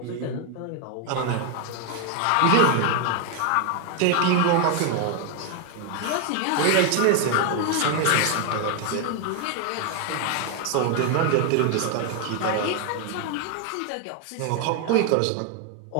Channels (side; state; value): both; different; correlation 0.01